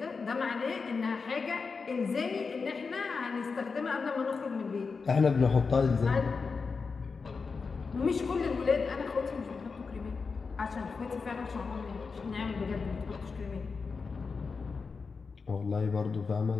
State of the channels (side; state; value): right; quieter; 4.9 dB